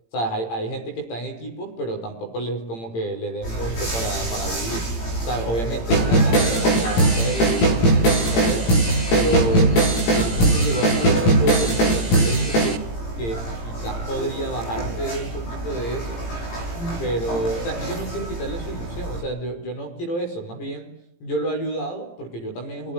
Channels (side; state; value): right; late; 18 ms